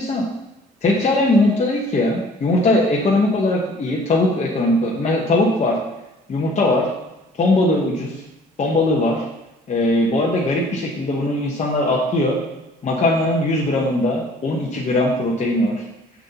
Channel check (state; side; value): normal; both; correlation 0.53